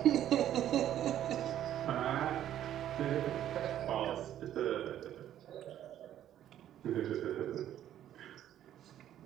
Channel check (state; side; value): quieter; left; 11.4 dB